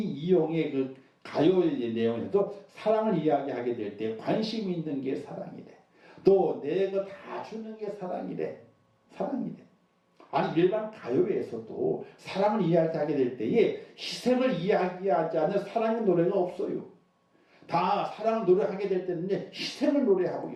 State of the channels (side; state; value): both; identical; correlation 1.00